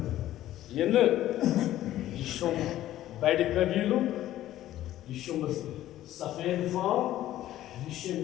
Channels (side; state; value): right; quieter; 13.7 dB